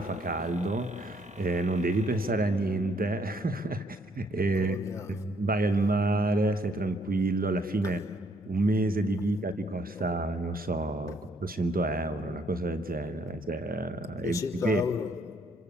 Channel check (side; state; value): both; normal; correlation 0.67